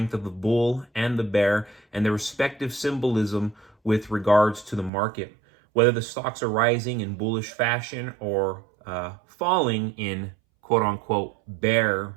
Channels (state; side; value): drops out; left; at 4.9 s